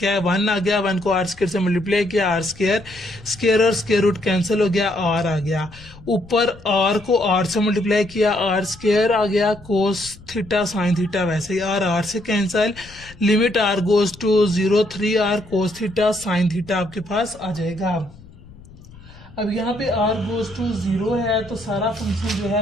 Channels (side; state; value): left; noise; rumble, 21 dB below the sound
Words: है, 1 आ गया, 1 को आर स्क्र से मल्टीप्लाई किया, आर स्क्र, स्क्र और स्क्र रूट कैंसिल हो गया, आर आ गया। ऊपर आर को आर से मल्टीप्लाई किया, आर स्क्र आ गया, कोस थीटा साइन थीटा वैसे ही आर से cancel. Limit r goes to 0, 3 r cos theta sine theta आपके पास आ जाएगा। अब यहाँ पे आर गोज टू 0 है तो सारा फंक्शन जो